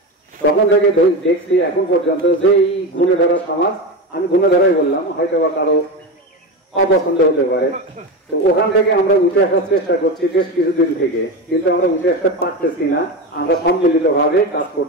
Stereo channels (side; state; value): both; normal; correlation 0.20